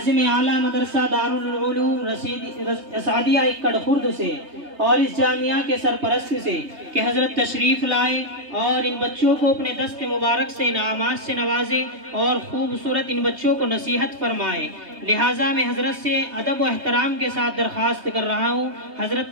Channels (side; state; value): left; late; 3.2 ms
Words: اعلیٰ مدرسہ دارالعلوم اسعدیہ اکڑ خرد سے اور اس جامعہ کے سرپرست سے کہ حضرت تشریف لائے اور ان بچوں کو اپنے دست مبارک سے انعامات سے نوازے اور خوبصورت ان بچوں کو نصیحت فرمائے۔ لہٰذا میں حضرت سے ادب و احترام کے ساتھ درخواست کر رہا ہوں حضرت